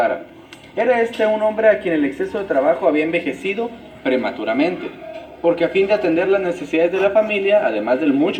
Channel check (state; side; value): identical; both; correlation 1.00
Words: Era este un hombre a quien el exceso de trabajo había envejecido prematuramente, porque a fin de atender las necesidades de la familia, además del